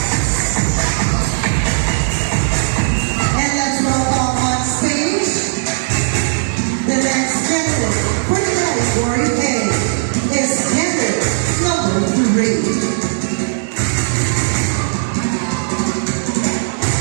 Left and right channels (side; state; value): left; silent; digital silence